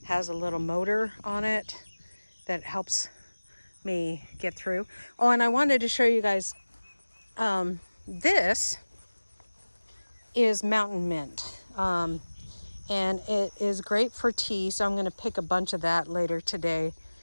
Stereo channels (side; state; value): both; inverted; correlation -1.00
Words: has a little motor on it that helps me get through. Oh, and I wanted to show you guys, this is mountain mint. And it is great for tea, so I'm going to pick a bunch of that later today